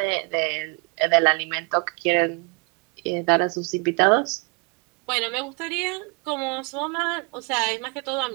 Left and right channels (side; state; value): left; quieter; 33.8 dB